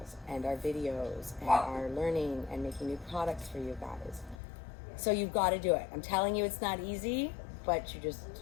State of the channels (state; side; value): drops out; right; at 4.4 s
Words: and our videos and our learning and making new products for you guys. So you've got to do it. I'm telling you, it's not easy, but you